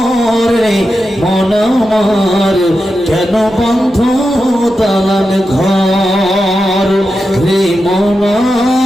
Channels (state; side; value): normal; both; correlation 0.89